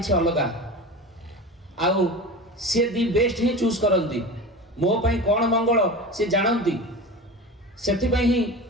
अलग आउ सी दि बेस्ट ही चूज करती मो पाई कौन मंगल सी जानती से ही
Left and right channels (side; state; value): both; normal; correlation 0.30